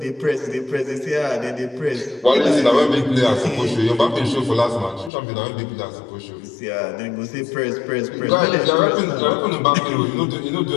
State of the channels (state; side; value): drops out; right; at 5.1 s